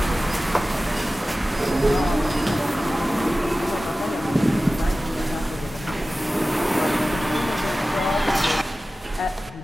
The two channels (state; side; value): normal; both; correlation 0.96